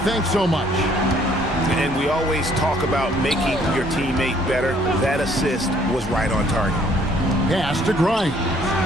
so much. And we always talk about making your teammate better. That assist was right on target. Pass to Grimes.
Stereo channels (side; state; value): both; normal; correlation 0.62